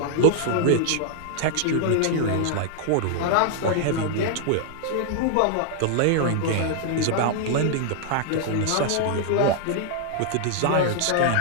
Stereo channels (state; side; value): different; both; correlation -0.01